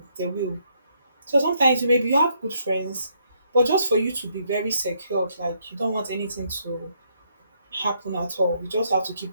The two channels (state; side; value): inverted; both; correlation -0.73